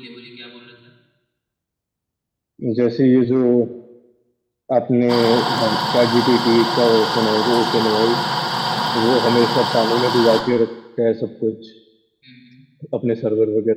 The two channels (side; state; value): both; identical; correlation 1.00